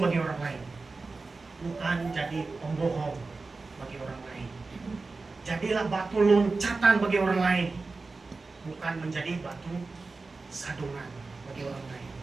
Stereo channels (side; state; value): left; quieter; 3.8 dB